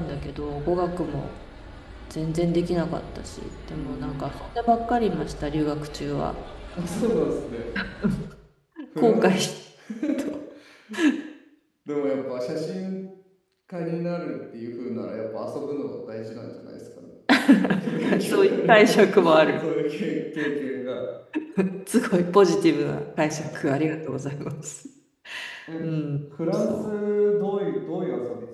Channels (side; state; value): both; identical; correlation 1.00